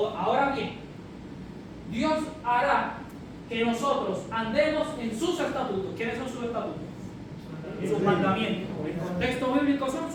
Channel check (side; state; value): both; identical; correlation 1.00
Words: bien, Dios hará que nosotros andemos en sus estatutos. ¿Quiénes son sus estatutos? Sus mandamientos. El contexto bíblico son